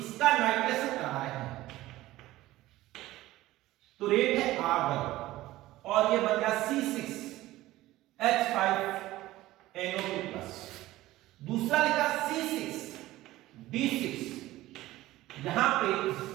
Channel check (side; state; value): left; quieter; 16.7 dB